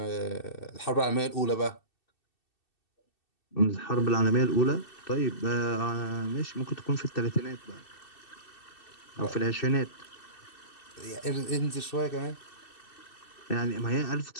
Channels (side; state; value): right; late; 2.6 ms